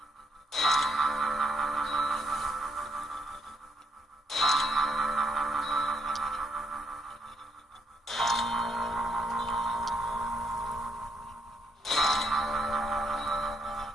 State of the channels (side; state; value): both; normal; correlation 0.74